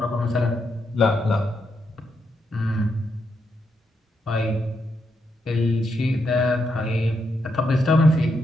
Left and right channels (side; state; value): both; normal; correlation 0.81